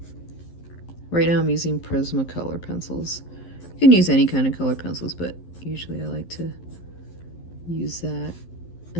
Right now I'm using Prismacolor pencils. You can use any kind of color pencils, but usually I like to use that.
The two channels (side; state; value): right; late; 11 ms